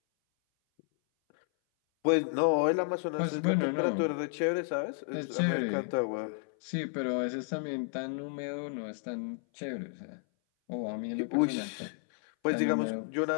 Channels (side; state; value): right; silent; 56 dB below the other